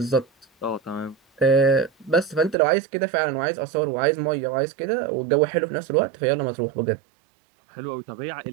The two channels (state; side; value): drops out; left; at 2.6 s